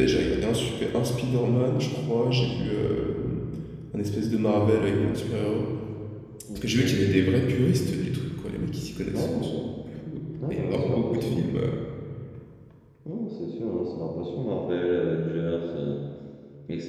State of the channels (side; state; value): both; identical; correlation 1.00